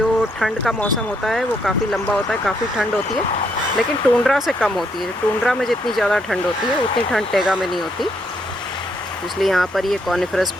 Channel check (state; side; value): normal; both; correlation 0.74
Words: ठंड का मौसम होता है वो काफ़ी लंबा होता है, काफ़ी ठंड होती है, लेकिन टुंड्रा से कम होती है। टुंड्रा में जितनी ज़्यादा ठंड होती है उतनी ठंड टेगा में नहीं होती, इसलिए यहाँ पर ये कॉनिफरस